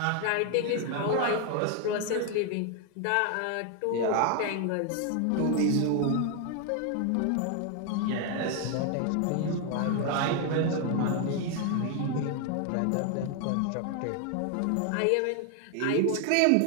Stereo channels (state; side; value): different; both; correlation 0.01